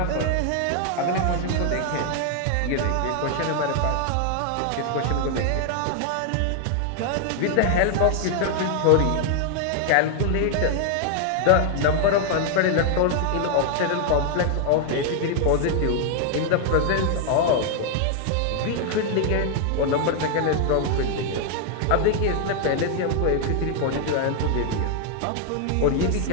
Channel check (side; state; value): both; different; correlation 0.00